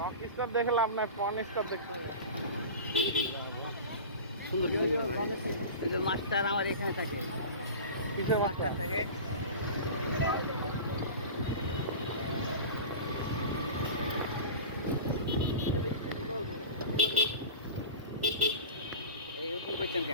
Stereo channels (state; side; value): inverted; both; correlation -0.33